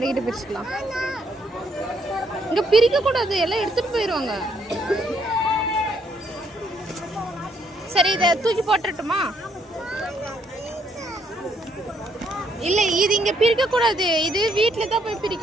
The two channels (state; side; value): normal; both; correlation 0.71